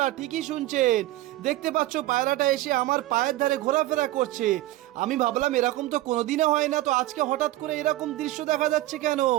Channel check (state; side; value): quieter; left; 16.4 dB